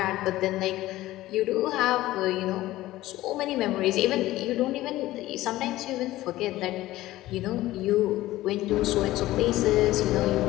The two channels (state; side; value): quieter; right; 16.3 dB